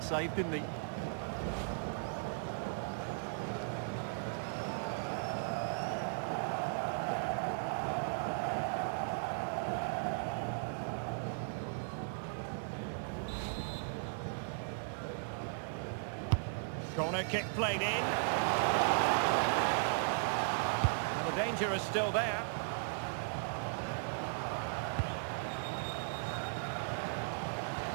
save, didn't he? Corner kick played in. The danger is still there.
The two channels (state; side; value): silent; left; digital silence